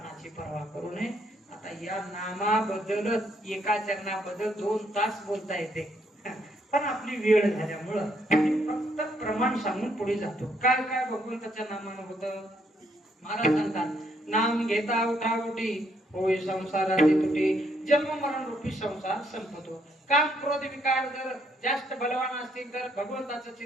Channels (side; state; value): both; normal; correlation 0.72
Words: पर्वा करू नये. आता या नामाबद्दलच एका चरणाबद्दल 2 तास बोलता येते. पण आपली वेळ झाल्यामुळं मी फक्त प्रमाण सांगून पुढे जातो. काय काय भगवंताच्या नामानं होतं. महाराज सांगतात नाम घेता उठाउठी होय संसाराची तुटी, जन्म मरण रूपी संसार संपतो. काम क्रोध विकार जर जास्त बलवान असतील तर भगवंताचं